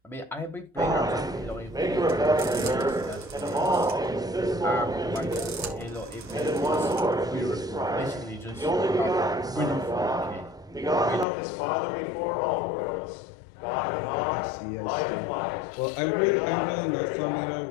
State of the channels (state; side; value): drops out; right; at 11.2 s